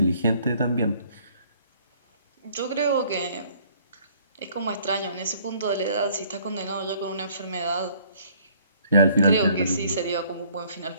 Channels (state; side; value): inverted; both; correlation -0.60